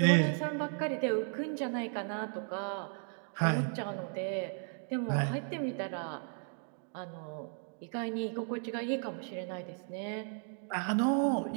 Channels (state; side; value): silent; left; 54 dB below the other